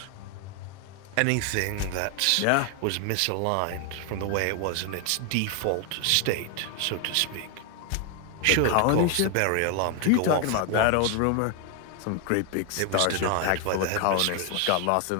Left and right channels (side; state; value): both; different; correlation 0.00